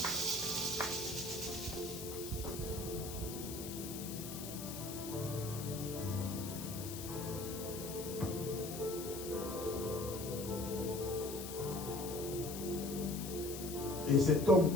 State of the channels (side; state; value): left; noise; hiss, 9 dB below the sound